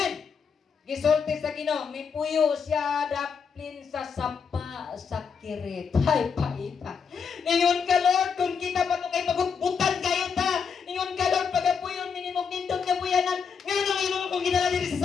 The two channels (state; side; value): quieter; right; 6.2 dB